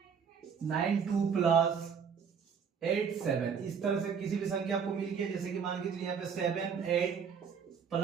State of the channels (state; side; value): quieter; left; 6.7 dB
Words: 9 2 प्लस 8 7, इस तरह से किसी भी संख्या आपको मिल गया। जैसे कि मान के चलिए यहाँ पे 7 8